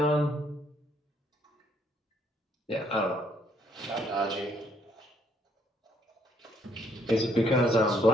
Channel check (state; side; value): normal; both; correlation 0.68